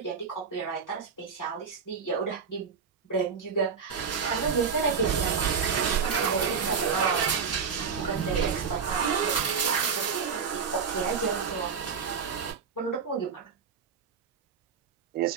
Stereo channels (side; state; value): left; quieter; 6.0 dB